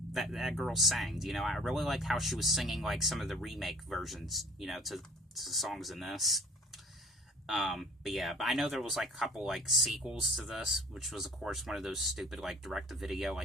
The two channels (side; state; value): both; normal; correlation 0.48